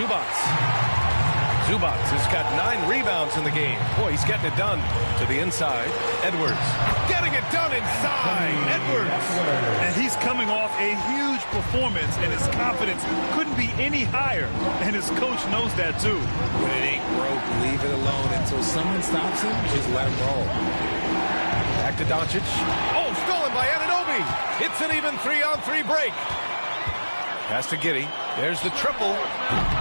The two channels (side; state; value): both; inverted; correlation -1.00